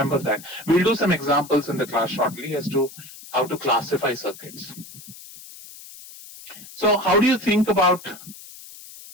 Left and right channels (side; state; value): left; noise; hiss, 17 dB below the sound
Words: that. We'll do some examples in the class shortly as to how to classify circuits. So how do you think about